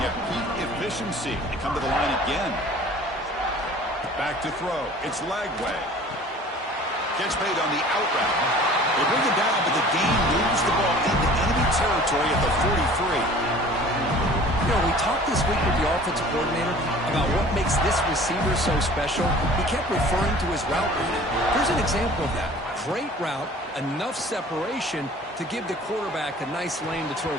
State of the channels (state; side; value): normal; both; correlation 0.47